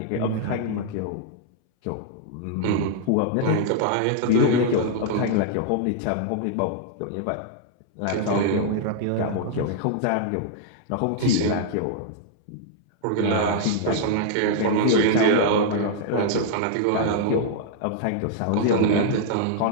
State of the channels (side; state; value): both; different; correlation -0.01